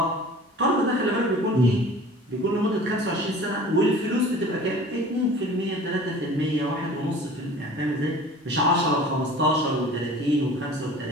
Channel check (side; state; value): both; normal; correlation 0.43